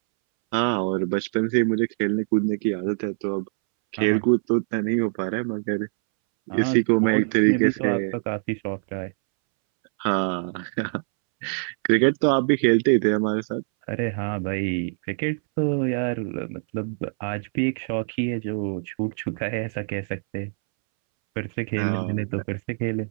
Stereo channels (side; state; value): left; silent; 62 dB below the other